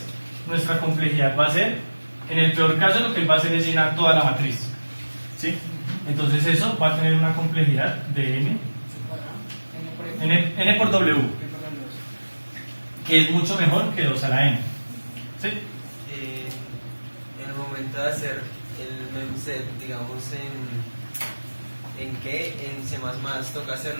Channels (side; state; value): both; inverted; correlation -1.00